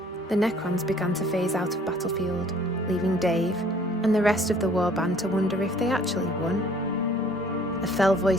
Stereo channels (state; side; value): normal; both; correlation 0.56